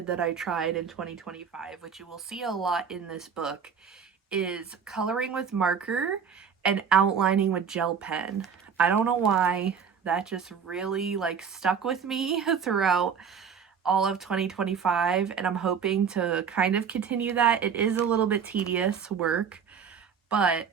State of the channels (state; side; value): quieter; left; 6.8 dB